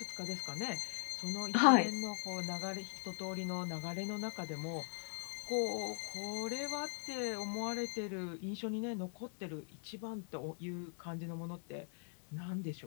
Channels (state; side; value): silent; right; 51 dB below the other